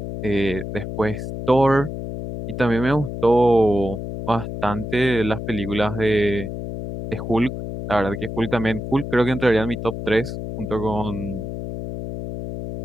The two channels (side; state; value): left; noise; hum, 7 dB below the sound